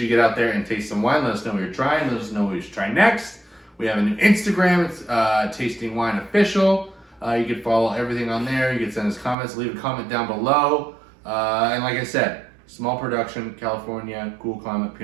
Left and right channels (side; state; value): left; drops out; at 9.3 s